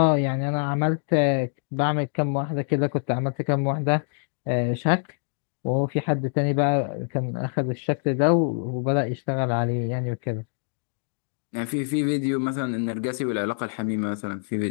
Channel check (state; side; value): silent; right; digital silence